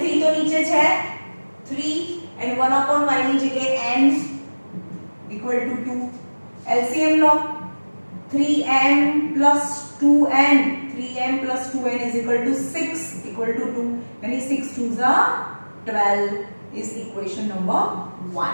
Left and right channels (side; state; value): both; inverted; correlation -1.00